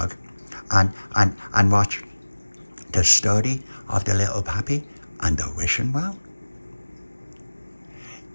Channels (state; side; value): inverted; both; correlation -1.00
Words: and watch the story of the Little Papi and the wishing well?